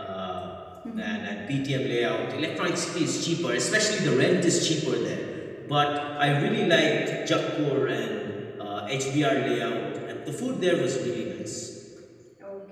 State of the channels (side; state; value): both; identical; correlation 1.00